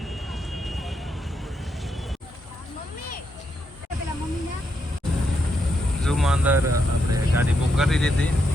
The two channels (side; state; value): both; normal; correlation 0.80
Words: ઝૂમાં અંદર આપણે ગાડી બુક કરી દીધી.